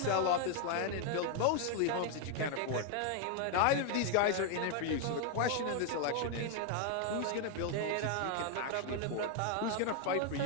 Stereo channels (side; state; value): both; different; correlation 0.00